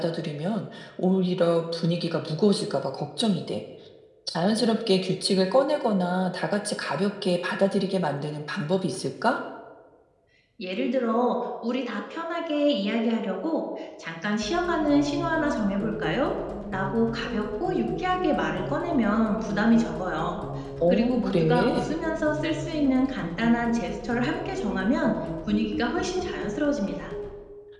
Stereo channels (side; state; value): both; identical; correlation 1.00